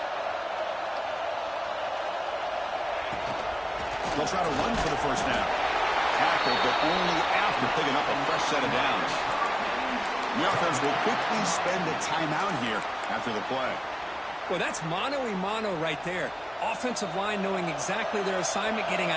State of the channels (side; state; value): both; identical; correlation 1.00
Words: They'll try to run for the first down. Tackled, but only after picking up a fresh set of downs. The offense will quickly spend a timeout here after the play. Well, that's mano-a-mano right there. Offensive line knowing exactly their assignment, getting